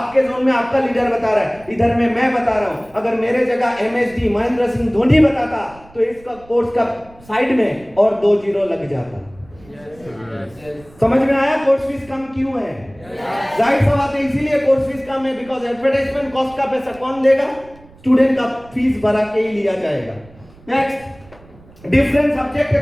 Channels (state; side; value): noise; right; rumble, 25 dB below the sound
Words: जोन में आपका लीडर बता रहा है, इधर में मैं बता रहा हूं। अगर मेरे जगह एमएसडी महेंद्र सिंह धोनी बताता तो इसका कोर्स का साइड में और 2 जीरो लग जाता। समझ में आया कोर्स फीस कम क्यों है? जाहिर सा बात है, इसीलिए कोर्स फीस कम है। बिकॉज एडवर्टाइजमेंट कॉस्ट का पैसा कौन देगा? स्टूडेंट का फीस भरा के ही लिया जाएगा। Next, different subject